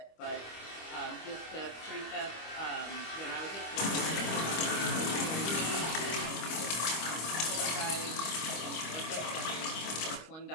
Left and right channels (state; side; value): late; right; 25 ms